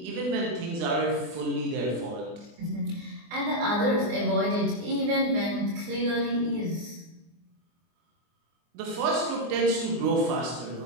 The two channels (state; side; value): late; left; 24 ms